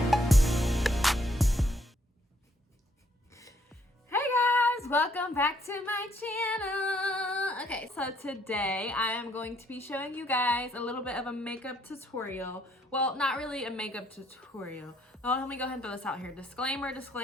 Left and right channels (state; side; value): normal; both; correlation 0.69